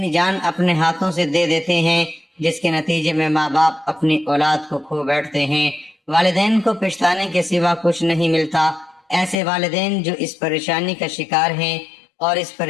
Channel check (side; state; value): right; drops out; at 9.3 s